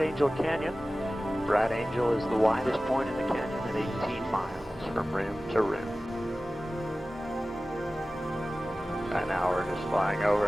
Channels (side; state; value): both; normal; correlation 0.96